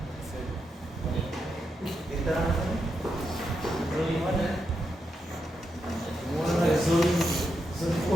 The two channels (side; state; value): both; normal; correlation 0.84